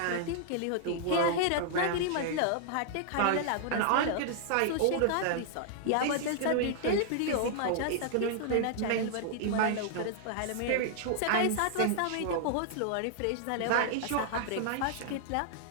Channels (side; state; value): both; different; correlation -0.01